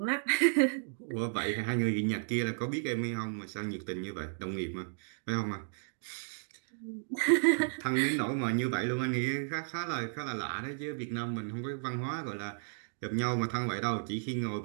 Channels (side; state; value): left; silent; digital silence